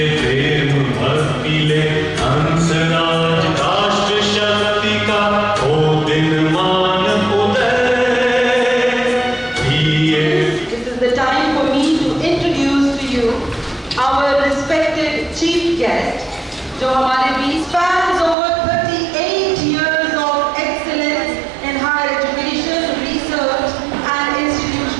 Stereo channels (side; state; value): left; drops out; at 18.4 s